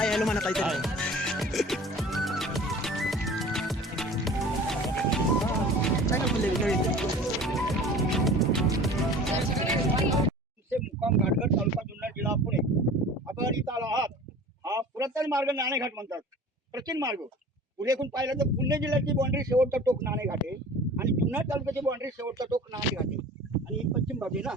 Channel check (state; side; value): normal; both; correlation 0.42